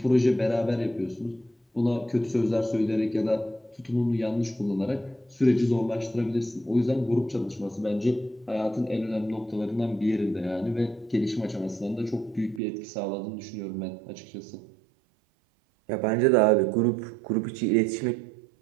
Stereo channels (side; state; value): left; drops out; at 12.6 s